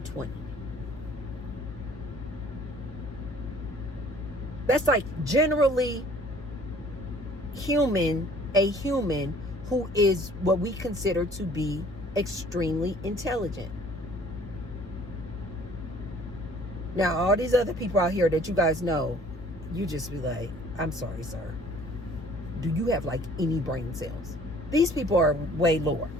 That's generally a human who is what we consider to be extremely intelligent. Now, all these other people out here that you guys know, you just be like, I'm sorry, sir. Do you have like any brain cells? These people are way lower.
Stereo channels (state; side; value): normal; both; correlation 0.54